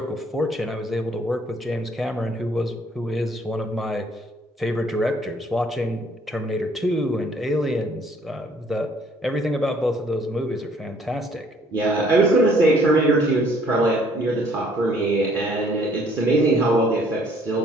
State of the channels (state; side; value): normal; both; correlation 0.61